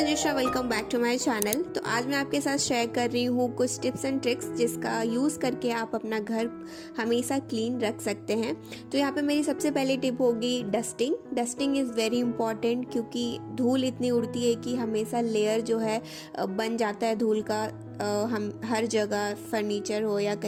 Manjusha, welcome back to my channel. तो आज मैं आपके साथ शेयर कर रही हूँ कुछ टिप्स एंड ट्रिक्स जिसका यूज़ करके आप अपना घर हमेशा क्लीन रख सकते हैं। तो यहाँ पे मेरी सबसे पहली टिप होगी dusting. Dusting is very important क्योंकि धूल इतनी उड़ती है कि हमेशा लेयर जो है बन जाता है धूल का, हम हर जगह फर्नीचर हो या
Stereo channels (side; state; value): both; identical; correlation 1.00